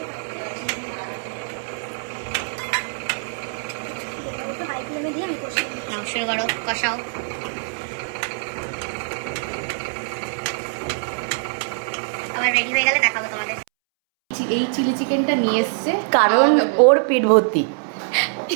নাও, শুরু করো, কষাও। আমার রেডি হয়ে গেলে দেখাবো তোমাদের। এই চিলি চিকেনটা নিয়ে এসছে কারণ ওর পেট ভর্তি।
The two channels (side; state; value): left; silent; 63 dB below the other